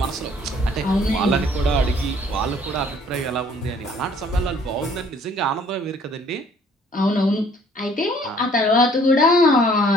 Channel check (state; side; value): normal; both; correlation 0.59